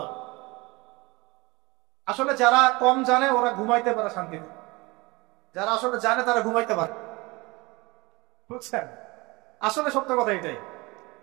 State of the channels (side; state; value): left; quieter; 24.0 dB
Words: যাবে। আসলে যারা কম জানে ওরা ঘুমাইতে পারে শান্তিতে, যারা আসলে জানে তারা ঘুমাইতে পারে, বুঝছেন? আসলে সত্য কথা এটাই।